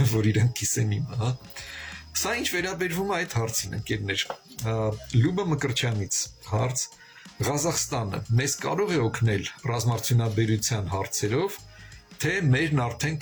եմ, որ իրեն կիսեն իմը, հա։ Սա ինչ վերաբերվում է այդ հարցին, ընկերներ, Լյուբա Մկրտչյանից հարց, Ղազախստանը մեզ կարող է օգնել ռազմարտունաբերության հարցերով, թե մերն արդեն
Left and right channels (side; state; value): both; identical; correlation 1.00